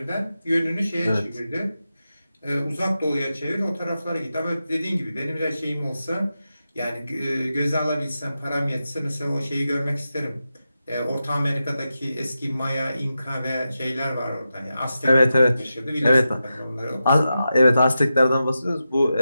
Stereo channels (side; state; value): both; inverted; correlation -0.90